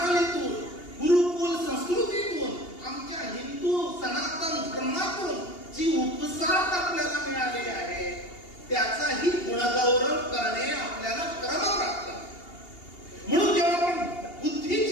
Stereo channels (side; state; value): right; late; 2.8 ms